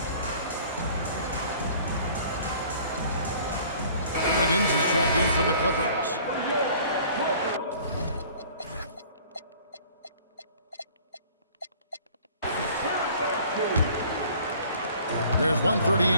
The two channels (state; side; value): inverted; both; correlation -0.51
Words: Wiggins is checked in for the Clippers. There's